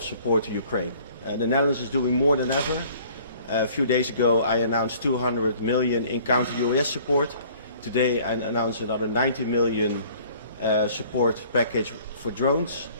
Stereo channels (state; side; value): inverted; both; correlation -0.54